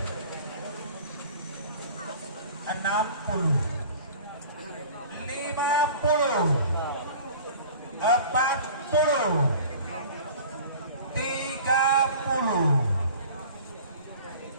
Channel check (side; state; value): both; inverted; correlation -0.43